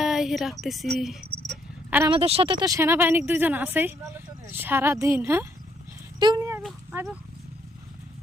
রাখতেছি। আর আমাদের সাথে তো সেনাবাহিনীর 2 জন আছেই সারাদিন। হ্যাঁ তুই নিয়ে আইব আইব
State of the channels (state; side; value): normal; both; correlation 0.70